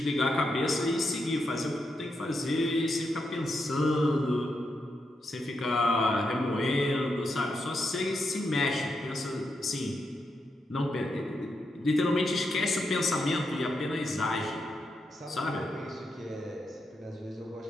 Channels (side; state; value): both; normal; correlation 0.83